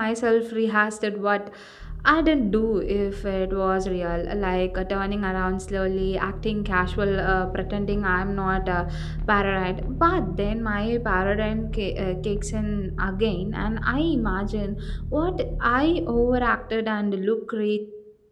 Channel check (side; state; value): both; identical; correlation 1.00